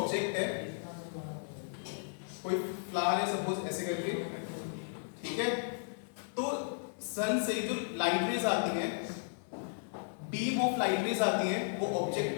है, कोई फ्लावर है सपोज ऐसे करके, ठीक है, तो सन से जो लाइट रेज आती हैं, बीम ऑफ लाइट रेज आती हैं, वो ऑब्जेक्ट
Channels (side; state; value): right; silent; 55 dB below the other